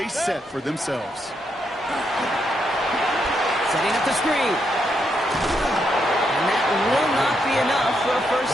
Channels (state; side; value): normal; both; correlation 0.79